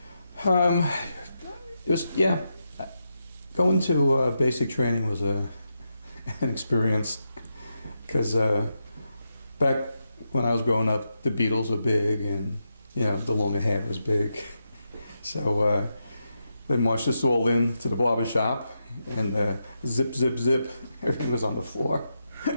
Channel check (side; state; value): both; inverted; correlation -0.85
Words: It was, yeah. Going to basic training was an experience because back when I was growing up, the Beatles were big and, you know, the longer hair was big. So they marched us all in to the barber shop and zip, zip, zip, everything was on the floor.